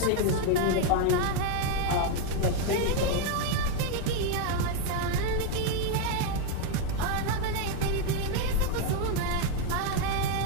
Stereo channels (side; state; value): both; different; correlation 0.01